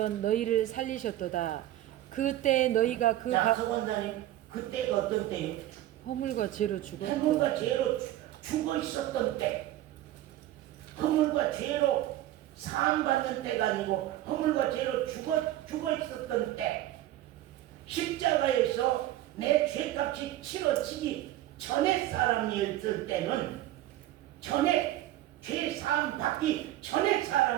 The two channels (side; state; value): left; quieter; 14.3 dB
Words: 너희를 살리셨도다. 그때 너희가 자, 서 원사님 그때가 어떤 때요? 허물과 죄로 죽었고 허물과 죄로 죽어 있었던 때, 허물과 죄로 사함받는 때가 아니고 허물과 죄로 죽어 있었던 때, 십자가에서 내 죄값이 치러지기 전에 사람이었을 때는, 전에 죄 사함 받기 전에